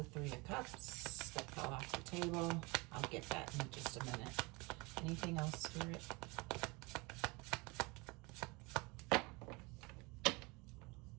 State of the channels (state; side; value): quieter; left; 26.2 dB